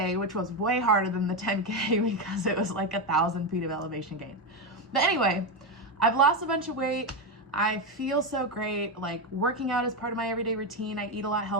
which was way harder than the 10K because it was like 1,000 feet of elevation gain. But anyway, I've lost a bunch of weight. I feel so great. Like working out is part of my everyday routine. I eat a lot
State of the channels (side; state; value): both; normal; correlation 0.10